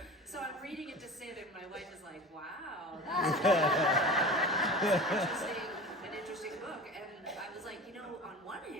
so I'm reading it to Sid, and my wife is like, wow, that's an interesting book. And I was like, you know, on one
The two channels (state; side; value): normal; both; correlation 0.34